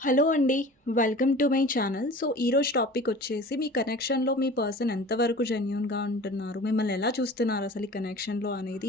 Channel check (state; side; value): normal; both; correlation 0.41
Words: హలో అండి. Welcome to my channel. So, ఈరోజు టాపిక్ వచ్చేసి మీ కనెక్షన్‌లో మీ పర్సన్ ఎంతవరకు జెన్యూన్‌గా ఉంటున్నారు? మిమ్మల్ని ఎలా చూస్తున్నారు అసలు ఈ కనెక్షన్‌లో అనేది